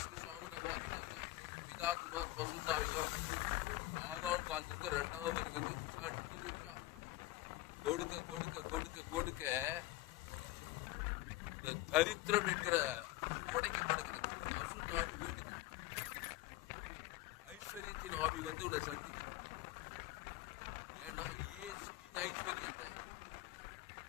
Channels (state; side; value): quieter; right; 16.9 dB